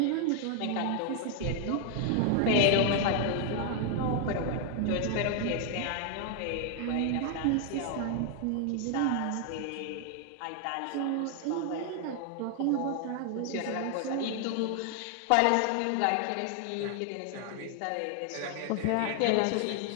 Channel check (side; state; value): both; different; correlation 0.00